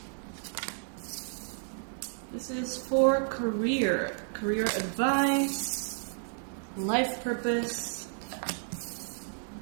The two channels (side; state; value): left; silent; 57 dB below the other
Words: This is for career advice, life purpose.